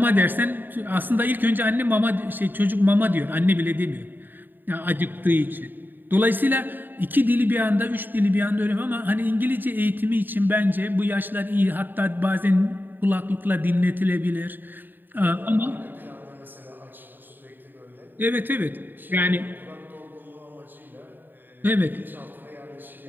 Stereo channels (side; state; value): left; late; 0.092 ms